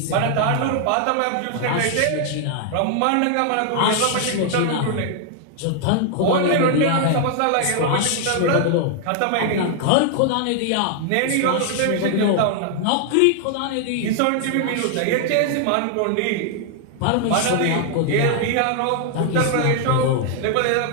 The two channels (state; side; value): different; both; correlation 0.00